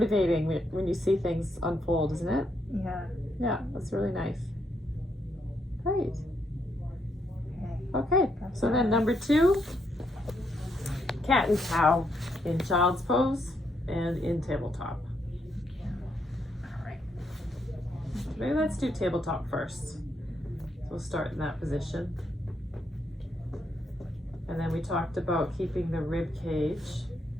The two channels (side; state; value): both; normal; correlation 0.77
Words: when you see things unfold, isn't it? Yeah. Yeah, that's really nice. Great. Okay, so then number 2, cat and cow in child's pose and in tabletop. All right. Maybe let's do tabletop first. So we'll start in that position. And then we talked about keeping the rib cage